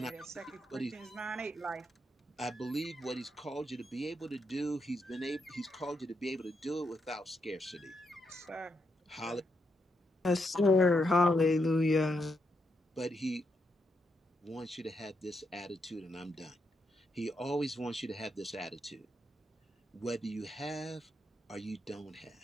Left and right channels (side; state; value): both; normal; correlation 0.81